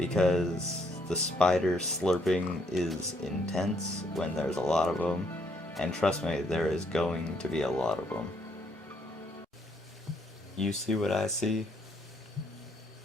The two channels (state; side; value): normal; both; correlation 0.70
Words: the spider slurping is intense when there's a lot of them, and trust me, there is going to be a lot of them. You see what I see?